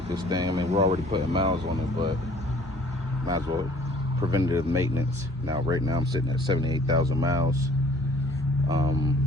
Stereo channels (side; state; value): both; normal; correlation 0.55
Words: this thing. I mean, we're already putting miles on it, but might as well preventative maintenance. Now, right now, I'm sitting at 78,000 miles.